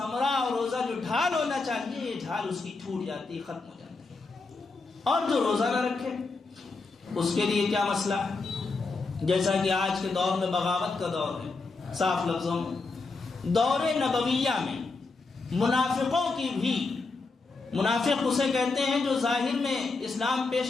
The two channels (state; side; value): quieter; right; 3.9 dB